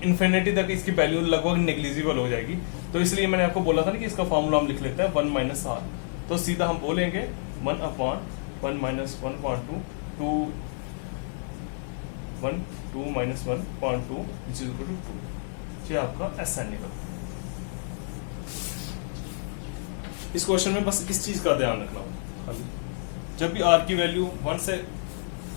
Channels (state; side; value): silent; right; digital silence